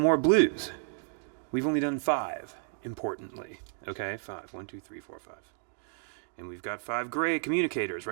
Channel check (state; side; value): silent; left; 57 dB below the other